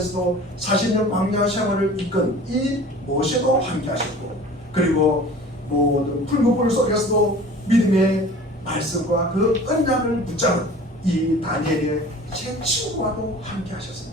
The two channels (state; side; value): normal; both; correlation 0.43